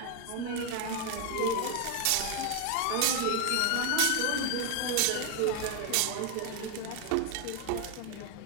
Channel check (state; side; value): different; both; correlation 0.01